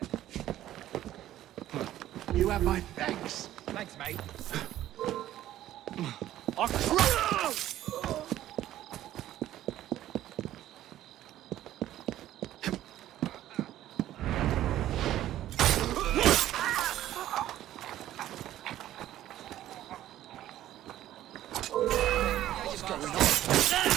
You have my thanks. Thanks, mate.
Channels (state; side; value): quieter; left; 13.2 dB